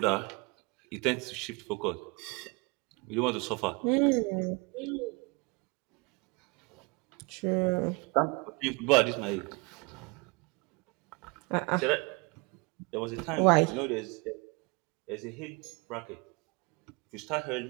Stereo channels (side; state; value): left; quieter; 29.0 dB